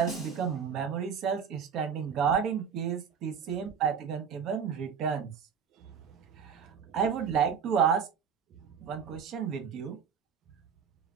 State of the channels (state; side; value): quieter; left; 6.9 dB